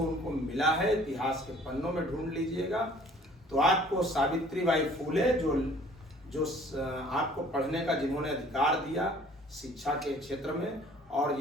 उनको मिला है। इतिहास के पन्नों में ढूंढ लीजिएगा तो आपको सावित्रीबाई फूले जो आपको पढ़ने का जिन्होंने अधिकार दिया शिक्षा के क्षेत्र में, और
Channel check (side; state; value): both; normal; correlation 0.54